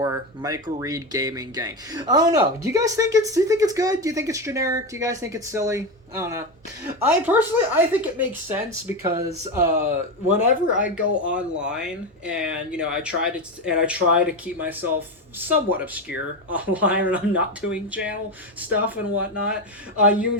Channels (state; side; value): normal; both; correlation 0.14